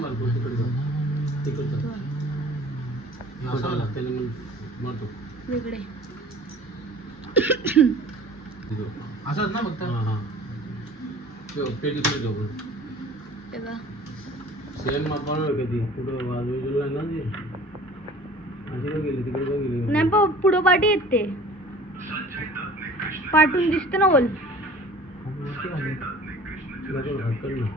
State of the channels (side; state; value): both; normal; correlation 0.46